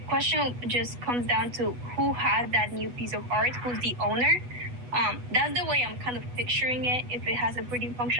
question just comes down to who has that new piece of art, who's the owner. That's the way I'm kind of picturing it. If it has a breeding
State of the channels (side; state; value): left; late; 8.2 ms